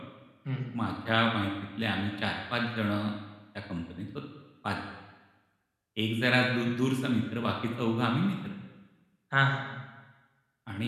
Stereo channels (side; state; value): both; identical; correlation 1.00